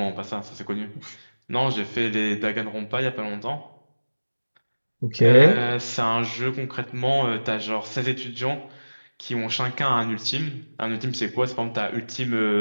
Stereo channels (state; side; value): inverted; both; correlation -1.00